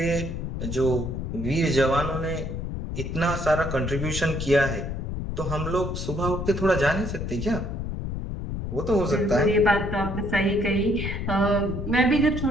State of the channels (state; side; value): noise; left; rumble, 4 dB below the sound